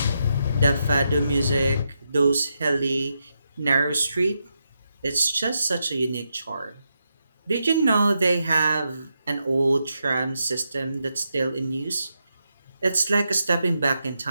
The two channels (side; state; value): both; inverted; correlation -0.84